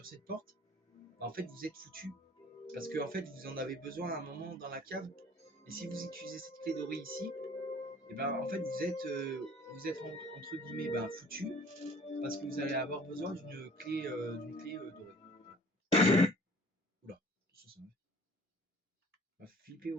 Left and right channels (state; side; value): normal; both; correlation 0.51